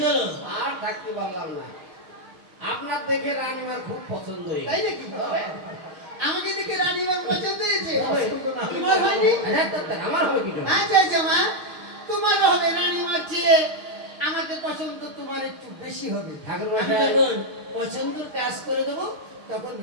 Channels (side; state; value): left; late; 6.4 ms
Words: হলো? আর থাকতে পারলাম না আপনার দেখে রানীমার খুব পছন্দ হয়েছে তাই নাকি? আমাকে দেখে রানীমার পছন্দ হয়েছে? পছন্দ না হলে তোমার হয়নি? আমার হবে কি করে? আচ্ছা আচ্ছা মা, তোমার হবে রানীমার চেয়ে আমাকে পছন্দ তোমার একটু বেশি হবে। ঠাকুর আমি মশাই যখন পছন্দ কাজ করে দেবো তখন